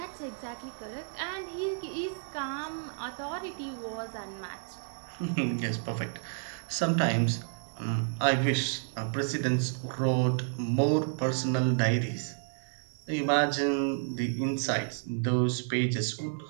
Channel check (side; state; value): left; silent; digital silence